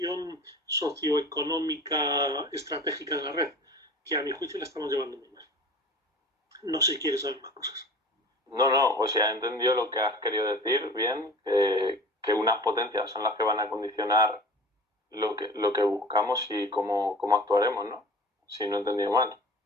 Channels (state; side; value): normal; both; correlation 0.40